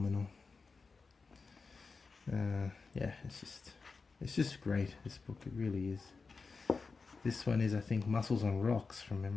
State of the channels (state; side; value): quieter; right; 4.5 dB